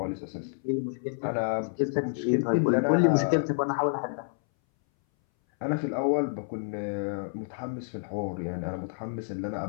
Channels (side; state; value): right; silent; 59 dB below the other